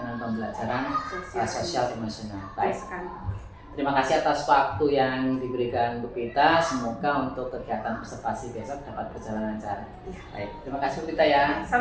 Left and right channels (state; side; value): identical; both; correlation 1.00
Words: pembelajaran sosial emosional. Baik. Terima kasih atas waktu yang diberikan Bu Vita. Semoga untuk kegiatan observasi besok dapat berjalan lancar. Baik, terima kasih Bu Vita ya.